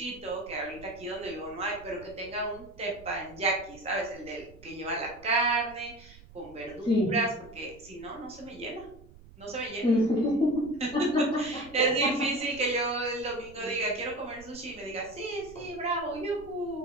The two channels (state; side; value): noise; right; rumble, 21 dB below the sound